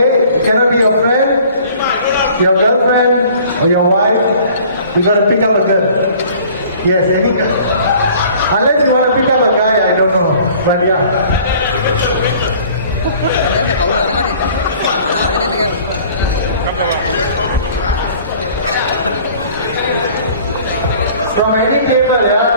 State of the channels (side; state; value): both; inverted; correlation -0.51